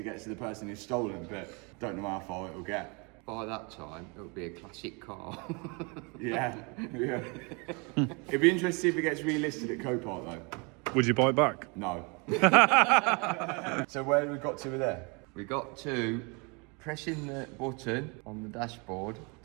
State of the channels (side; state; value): left; quieter; 31.2 dB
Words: gets to the person who's stolen. But don't know how far it will get. By that time, it'll be a classic car. Yeah. It'd be interesting to see if it gets relisted at Copart though. Would you buy it back? No. So where have we got to with there? We got to pressing the button on the dashboard